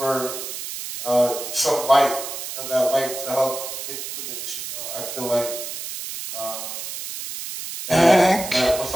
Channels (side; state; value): right; noise; hiss, 7 dB below the sound